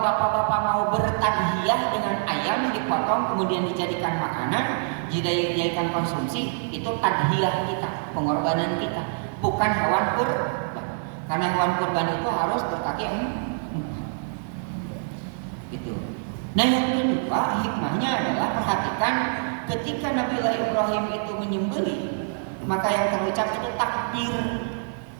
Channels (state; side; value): silent; left; 61 dB below the other